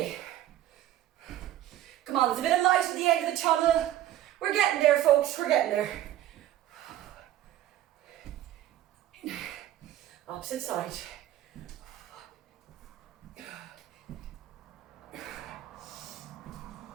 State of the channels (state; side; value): quieter; left; 13.1 dB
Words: Come on, there's a bit of light at the end of the tunnel. We're getting there, folks. We're getting there. Opposite side.